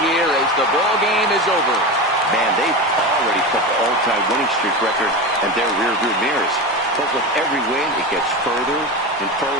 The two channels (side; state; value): both; normal; correlation 0.23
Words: as the ball game is over. Man, they've already put the all-time winning streak record in their rearview mirrors. But with every win, it gets further and